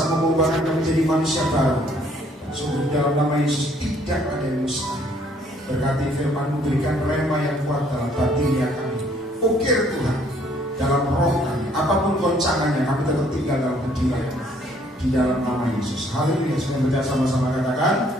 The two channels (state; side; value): normal; both; correlation 0.63